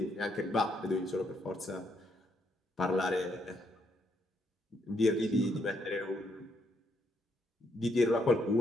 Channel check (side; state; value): both; normal; correlation 0.75